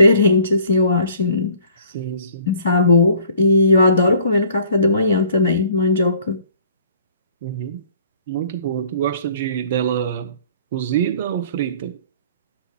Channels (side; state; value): both; inverted; correlation -0.55